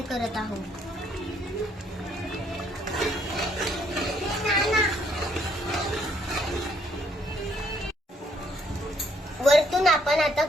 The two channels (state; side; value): normal; both; correlation 0.68